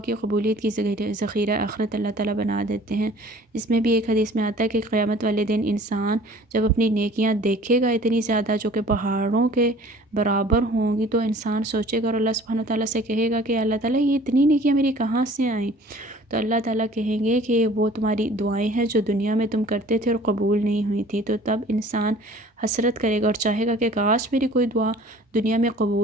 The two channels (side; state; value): both; normal; correlation 0.49